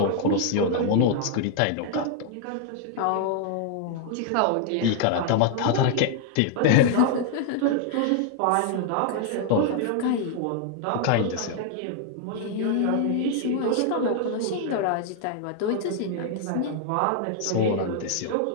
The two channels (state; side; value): different; both; correlation 0.00